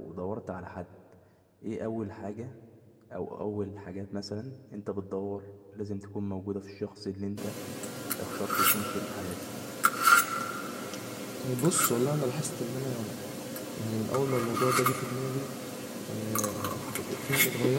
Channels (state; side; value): identical; both; correlation 1.00